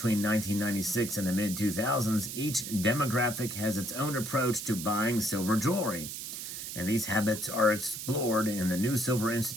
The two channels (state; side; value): noise; right; hiss, 7 dB below the sound